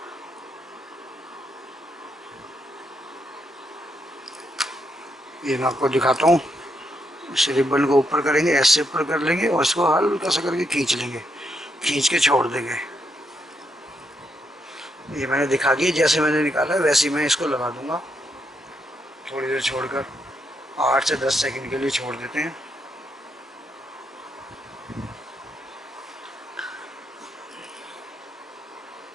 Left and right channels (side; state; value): both; normal; correlation 0.79